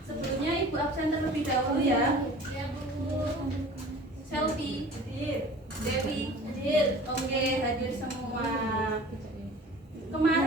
Sebelumnya Ibu absen terlebih dahulu ya. Ya, Bu. Selfie, Dewi, oke, hadir semua.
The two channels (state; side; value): normal; both; correlation 0.43